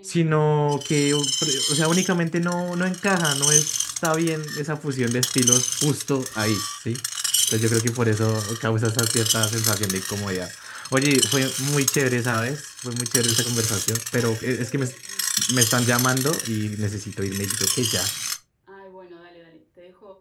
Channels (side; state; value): both; identical; correlation 1.00